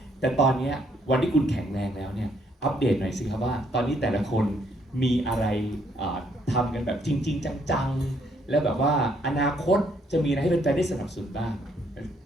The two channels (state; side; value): normal; both; correlation 0.69